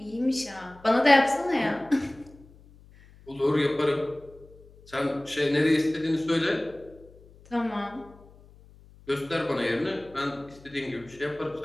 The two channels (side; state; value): left; noise; hum, 24 dB below the sound